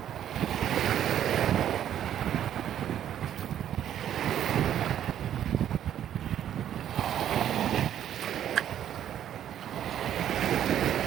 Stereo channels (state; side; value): quieter; left; 10.5 dB